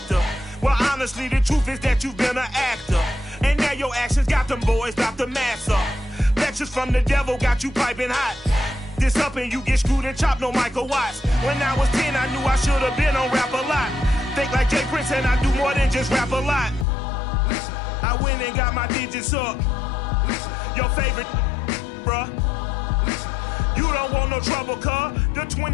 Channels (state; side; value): drops out; right; at 16.9 s